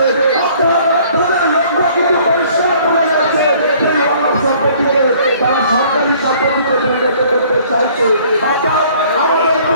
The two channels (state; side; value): inverted; both; correlation -0.56